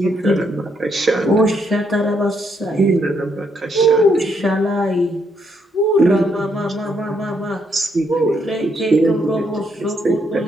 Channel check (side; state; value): both; normal; correlation 0.75